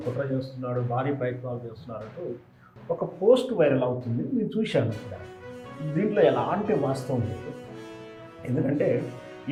కుట్ర చేస్తున్నాడు, భారీ ప్రయత్నాలు చేస్తున్నారంటూ ఒక పోస్ట్ వైరల్ అవుతుంది. నేను చూశాను. ఇక్కడ దీంట్లో ఎలాంటి వాస్తవం లేదు. ఎందుకంటే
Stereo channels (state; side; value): identical; both; correlation 1.00